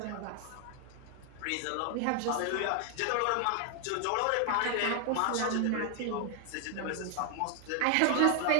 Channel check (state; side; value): different; both; correlation 0.00